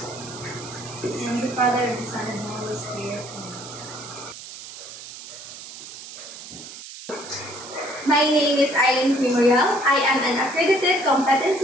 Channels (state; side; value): noise; right; hiss, 13 dB below the sound